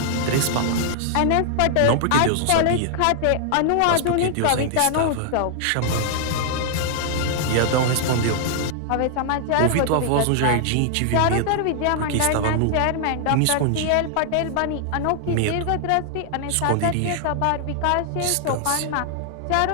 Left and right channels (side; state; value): both; different; correlation 0.00